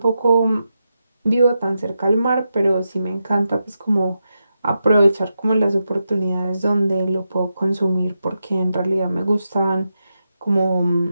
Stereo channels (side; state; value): both; inverted; correlation -0.88